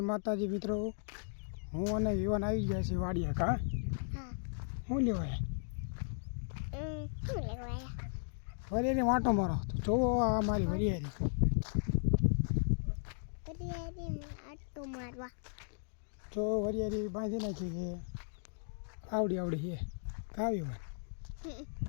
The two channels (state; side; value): silent; right; digital silence